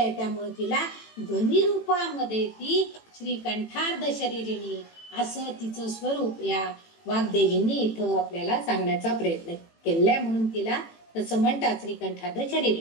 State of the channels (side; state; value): right; late; 18 ms